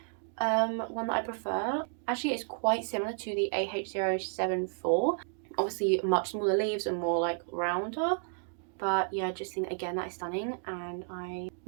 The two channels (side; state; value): left; silent; 56 dB below the other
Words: one that I prefer. Actually, it's quite similar to the AH074. Obviously much smaller leaves and more like rounder. But yeah, I just think again that is stunning, and I